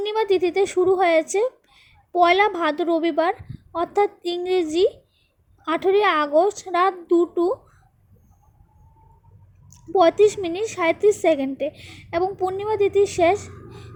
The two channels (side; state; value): both; identical; correlation 1.00